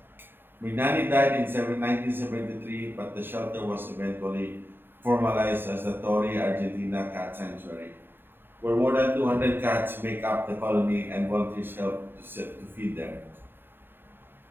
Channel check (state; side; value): late; left; 0.099 ms